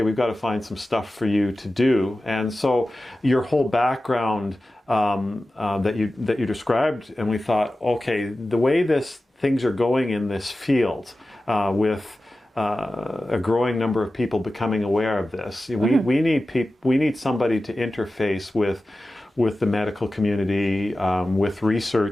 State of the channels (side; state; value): both; normal; correlation 0.95